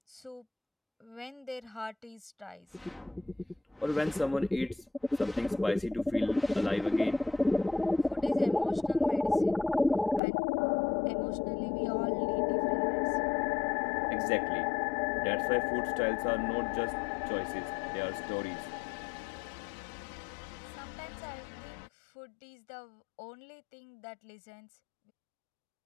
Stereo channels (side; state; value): right; drops out; at 10.2 s